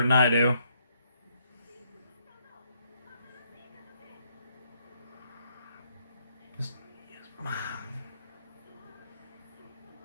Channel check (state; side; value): inverted; both; correlation -0.72